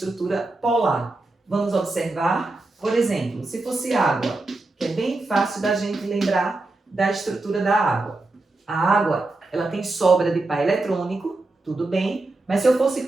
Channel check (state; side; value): quieter; left; 3.1 dB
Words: polar. Vamos observar, por exemplo, se fosse água, que é bem fácil da gente lembrar da estrutura da água. A água, ela tem sobra de par eletrônico, tudo bem, mas se eu fosse